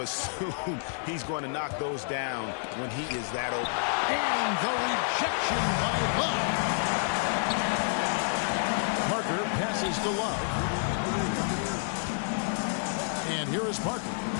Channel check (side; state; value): right; silent; digital silence